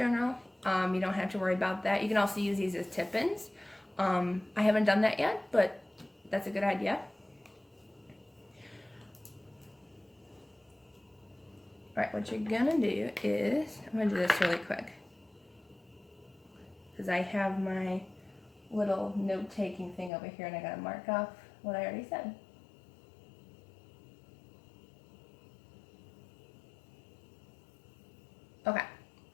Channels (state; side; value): drops out; right; at 20.1 s